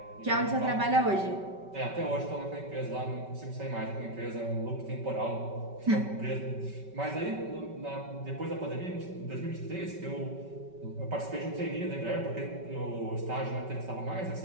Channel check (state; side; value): late; left; 5.2 ms